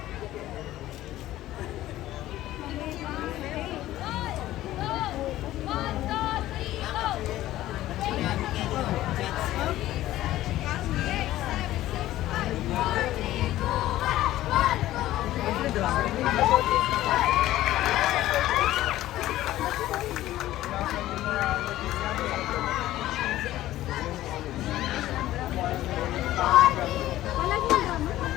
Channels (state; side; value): quieter; right; 14.8 dB